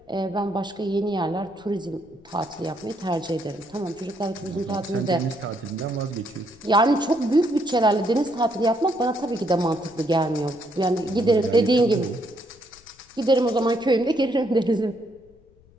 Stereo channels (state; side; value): noise; left; rumble, 29 dB below the sound